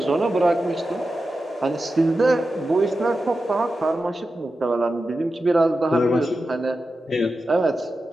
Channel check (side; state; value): both; normal; correlation 0.92